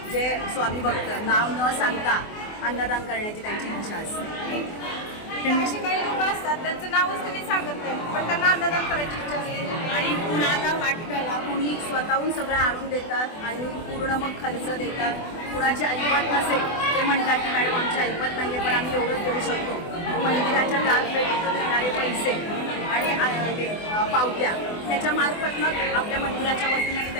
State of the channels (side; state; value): right; late; 24 ms